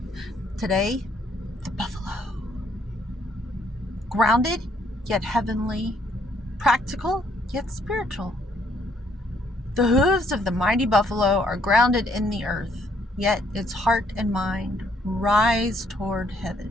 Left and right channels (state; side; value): normal; both; correlation 0.68